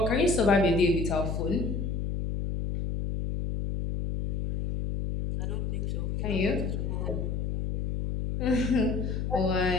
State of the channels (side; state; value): left; noise; hum, 1 dB below the sound